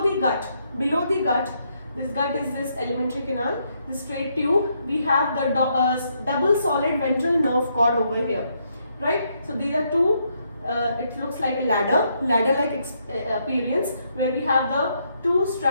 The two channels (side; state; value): both; inverted; correlation -0.76